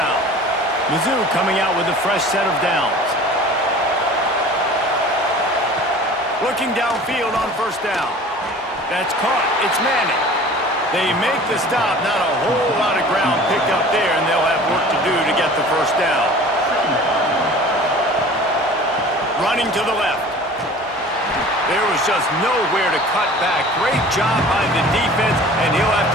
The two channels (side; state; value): both; normal; correlation 0.43